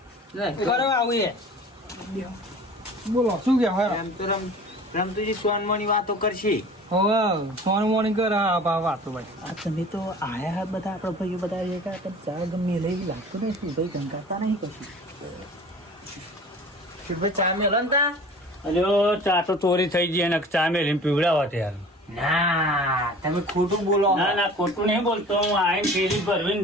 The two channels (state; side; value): normal; both; correlation 0.43